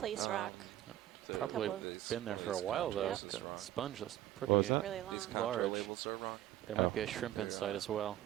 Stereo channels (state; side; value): quieter; left; 13.4 dB